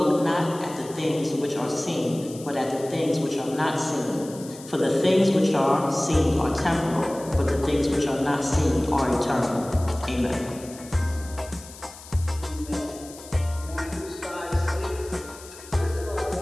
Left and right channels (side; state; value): left; noise; hiss, 17 dB below the sound